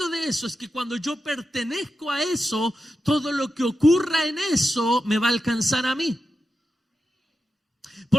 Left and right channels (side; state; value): both; normal; correlation 0.90